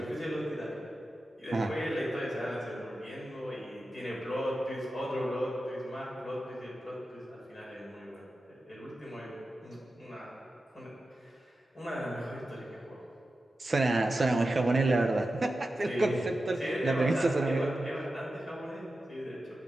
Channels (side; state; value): both; normal; correlation 0.92